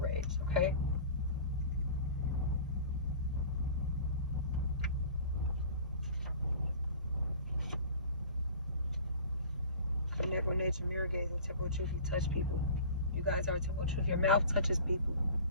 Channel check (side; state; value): both; inverted; correlation -0.41